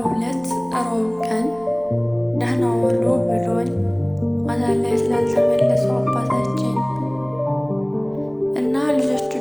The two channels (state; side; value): noise; right; rumble, 27 dB below the sound